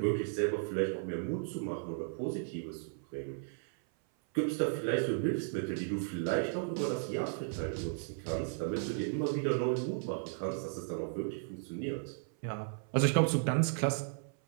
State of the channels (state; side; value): silent; left; 54 dB below the other